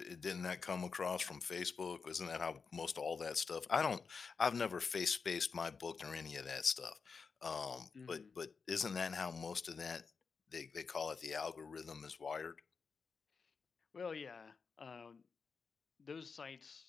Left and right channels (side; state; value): right; quieter; 5.3 dB